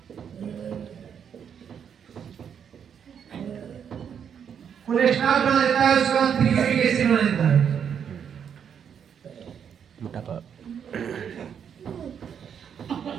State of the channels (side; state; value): left; quieter; 7.9 dB